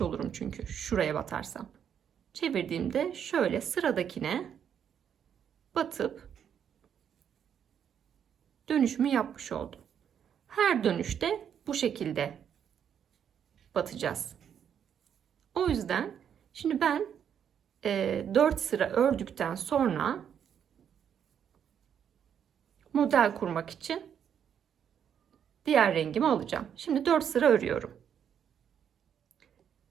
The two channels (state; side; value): quieter; left; 8.5 dB